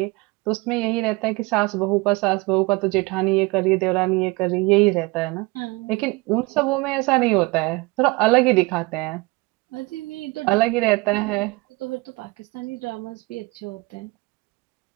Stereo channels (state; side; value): quieter; left; 24.4 dB